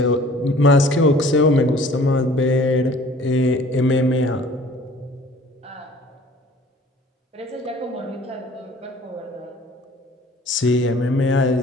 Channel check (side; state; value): both; normal; correlation 0.51